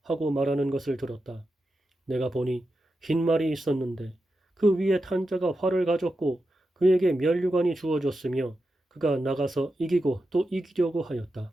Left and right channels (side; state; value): both; normal; correlation 0.89